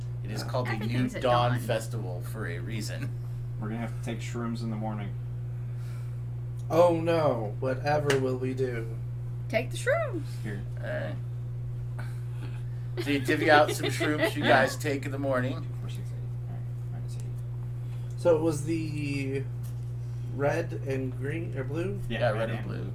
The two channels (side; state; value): both; identical; correlation 1.00